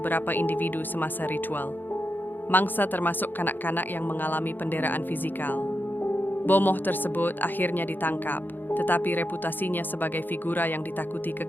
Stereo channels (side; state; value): right; late; 0.091 ms